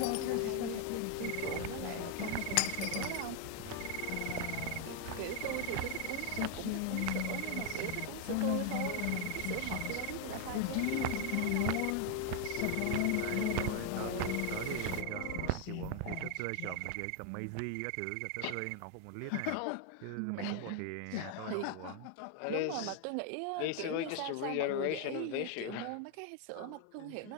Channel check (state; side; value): different; both; correlation 0.01